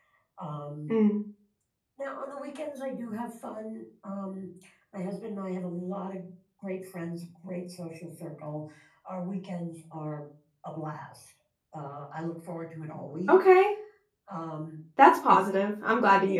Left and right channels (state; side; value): identical; both; correlation 1.00